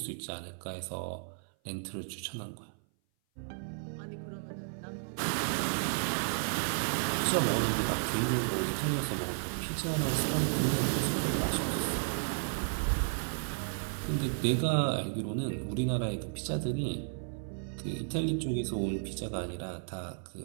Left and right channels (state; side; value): silent; left; 56 dB below the other